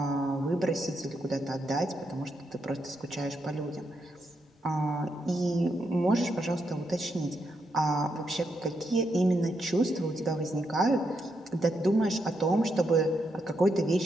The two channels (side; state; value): both; normal; correlation 0.81